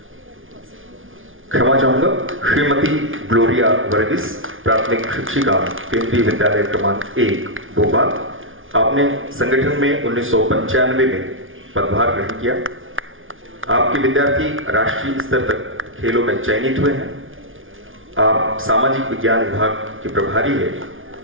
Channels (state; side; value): late; left; 0.58 ms